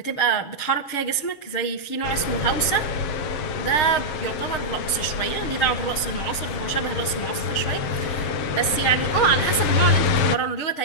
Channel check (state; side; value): late; right; 7.1 ms